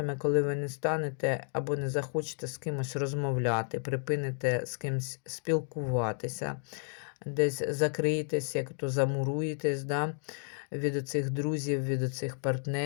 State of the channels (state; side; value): silent; right; 56 dB below the other